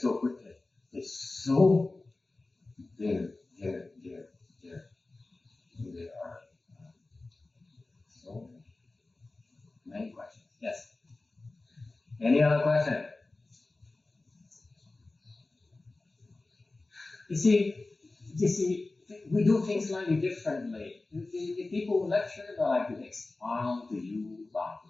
quickly. It's so there are so many questions. Yes. Any other question? You see, we do things slightly differently. The people lecture, they like to expound to you about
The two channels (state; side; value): quieter; right; 3.2 dB